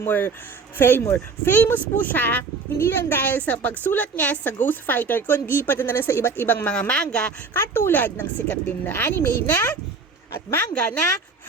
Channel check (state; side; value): quieter; left; 4.6 dB